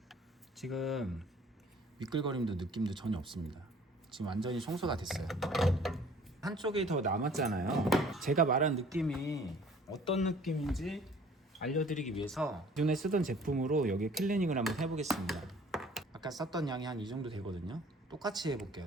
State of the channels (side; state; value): both; normal; correlation 0.53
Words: 지금 미끌거림도 느낌도 전혀 없습니다. 지금 완전히 청소가 됐어요. 한쪽이 더 남았잖아요. 제가 말한 느낌이 어떤 느낌인지 알려드리기 위해서 기존에 쓰던 제품으로 여기 클리닝을 한번 해보겠습니다. 아까 썼던 양이 한 이 정도 되거든요. 똑같이 해볼게요.